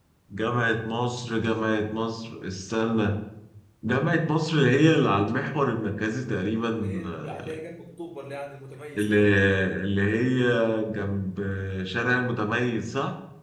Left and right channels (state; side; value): identical; both; correlation 1.00